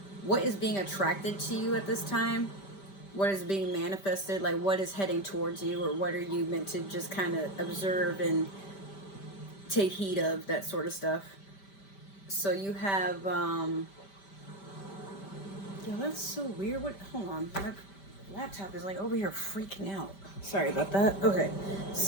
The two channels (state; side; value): late; right; 5.1 ms